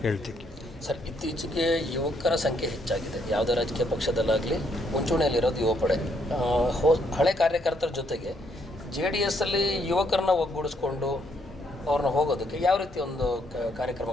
ಹೇಳ್ತೀವಿ. ಸರ್, ಇತ್ತೀಚೆಗೆ ಯುವಕರ ಸಂಖ್ಯೆ ಹೆಚ್ಚಾಗಿದೆ. ಯಾವುದೇ ರಾಜಕೀಯ ಪಕ್ಷದಲ್ಲಾಗಲಿ ಮುಂಚೂಣಿಯಲ್ಲಿರೋದು ಯುವ ಪಡೆ. ಹಳೆ ಕಾರ್ಯಕರ್ತರ ಜೊತೆಗೆ JDSಲ್ಲಿ ಯುವಕರನ್ನ ಒಗ್ಗೂಡಿಸ್ಕೊಂಡು ಅವ್ರನ್ನ ಹೋಗೋದಕ್ಕೆ ಯಾವ ರೀತಿ ಒಂದು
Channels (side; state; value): both; normal; correlation 0.72